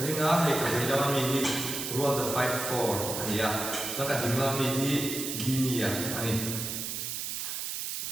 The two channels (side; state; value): right; noise; hiss, 4 dB below the sound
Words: ringa he ka lama mi hi rual the 54 ania la ka dinga mi hi ginia ani